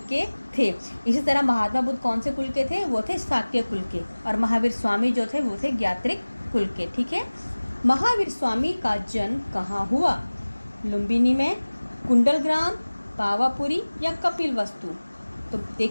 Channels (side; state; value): both; inverted; correlation -1.00